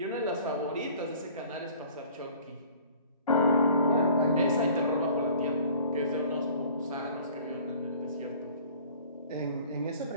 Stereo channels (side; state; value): both; inverted; correlation -0.50